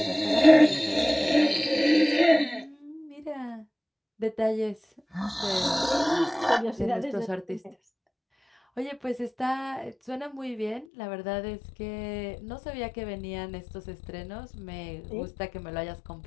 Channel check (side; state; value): right; drops out; at 10.9 s